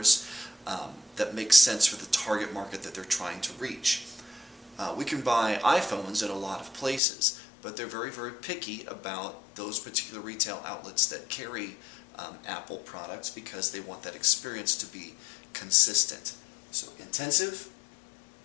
that make sense for the target market that they're trying to reach. We can buy iPhones at a lot of places, but they're very, very picky about those particular retail outlets that carry Apple products because they want that experience to be consistent. So intensive,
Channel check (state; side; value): drops out; right; at 7.0 s